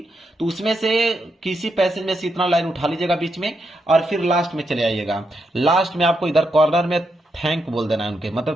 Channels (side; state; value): both; normal; correlation 0.82